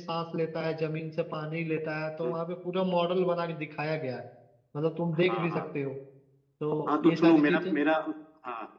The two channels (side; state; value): both; identical; correlation 1.00